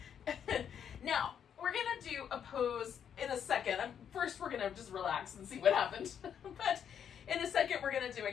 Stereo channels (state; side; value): quieter; right; 8.4 dB